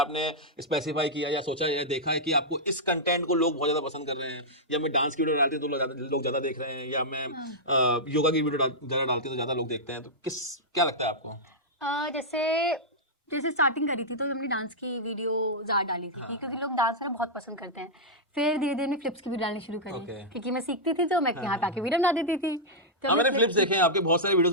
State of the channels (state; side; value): normal; both; correlation -0.09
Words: स्पेसिफाई किया या सोचा या देखा है कि आपको इस कंटेंट को लोग बहुत ज्यादा पसंद कर रहे हैं, या मैं डांस की वीडियो डालती हूँ तो लोग ज्यादा देख रहे हैं, या मैं योगा की वीडियो ज्यादा डालती हूँ तो ज्यादा लोग देखते हैं? तो क्या लगता है आपको? जैसे स्टार्टिंग करी थी तो हमने डांस की वीडियो ज्यादा डाली थी, क्योंकि लोग डांस करना बहुत पसंद करते हैं। फिर धीरे धीरे फ्लिप्स की वीडियो डालनी शुरू करी, क्योंकि मैं सीखती थी तो मैं यहाँ पे आके वीडियो बना देती थी। तो मैंने फ्लिप्स देखे हैं आपके, बहुत सारे वीडियोस